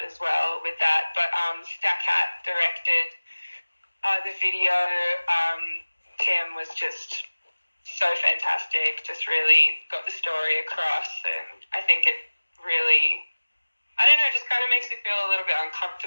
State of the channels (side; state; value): both; inverted; correlation -1.00